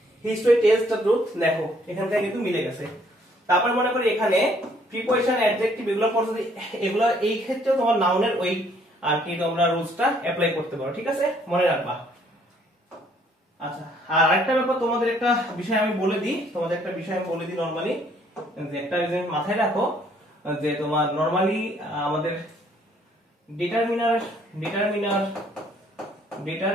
হিস্টরি টেলস দ্য ট্রুথ, দেখো এখান থেকে কিন্তু মিলে গেছে। তারপর মনে করি এখানে প্রিপোজিশন, অ্যাডজেক্টিভ এগুলো পড়ছো, এগুলো এই ক্ষেত্রেও তোমার নাউনের ওই আর কি তোমরা রুলসটা অ্যাপ্লাই করতে পারো। ঠিক আছে, মনে রাখবা। আচ্ছা, আর আরেকটা ব্যাপার তোমাদের একটা বিষয় আমি বলে দিই, নরমালি যে একটা জিনিস মাথায় রাখো, যে তোমার নরমালি আমাদের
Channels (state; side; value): normal; both; correlation 0.64